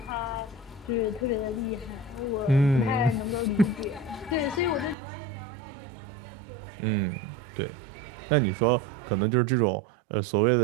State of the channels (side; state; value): left; drops out; at 5.0 s